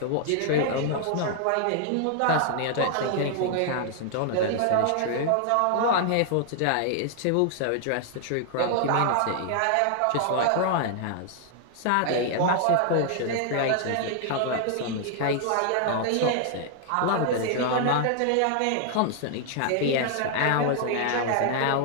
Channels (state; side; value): different; both; correlation 0.00